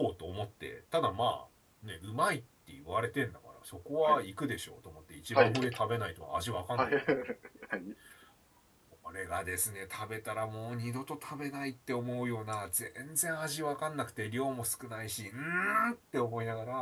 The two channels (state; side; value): identical; both; correlation 1.00